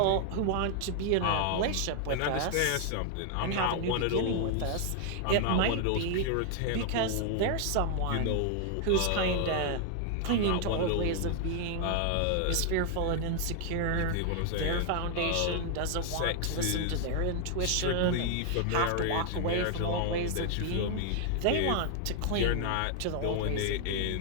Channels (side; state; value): both; different; correlation 0.00